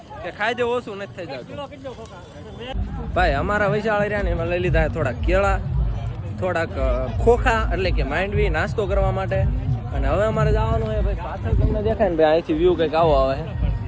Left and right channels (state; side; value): identical; both; correlation 1.00